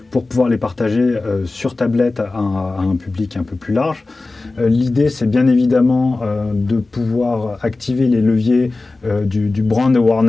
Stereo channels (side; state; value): right; quieter; 3.3 dB